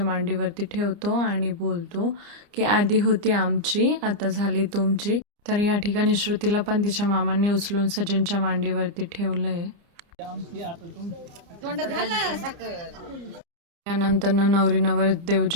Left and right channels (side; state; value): left; late; 29 ms